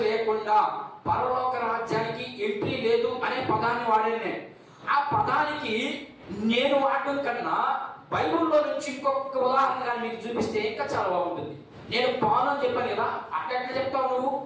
లేకుండా పరలోక రాజ్యానికి ఎంట్రీ లేదు అనే పదాన్ని వాడాను నేను. ఆ పదానికి నేను వాడడం కన్నా బైబిల్లో నుంచి ఇంకొక ఉదాహరణ మీకు చూపిస్తే ఇంకా చాలా బాగుంటుంది. నేను పాను అని చెప్పాను కదా, అట్లా చెప్తావు నువ్వు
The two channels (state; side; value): identical; both; correlation 1.00